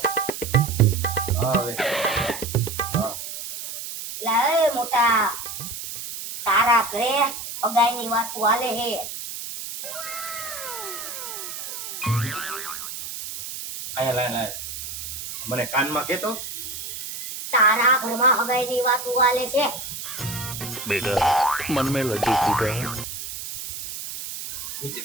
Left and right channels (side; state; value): right; noise; hiss, 8 dB below the sound